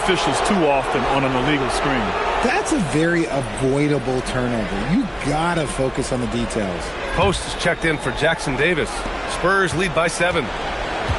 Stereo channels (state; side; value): identical; both; correlation 1.00